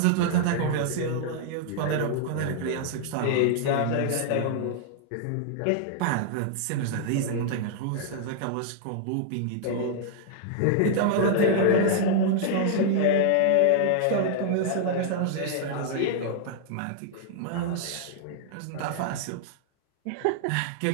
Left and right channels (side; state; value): both; different; correlation -0.01